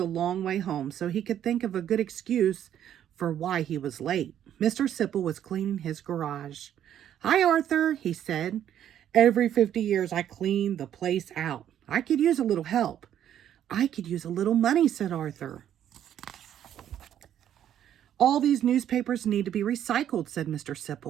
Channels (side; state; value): left; quieter; 10.4 dB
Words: long way home so he could think of a good excuse for why he was late. Mr. Sipple was cleaning his garage. Hi, Arthur, he said. Every 50 years I clean the place out. I could use a little help. I could use a little money, said Arthur. All these newspapers need to be recycled, said Mr.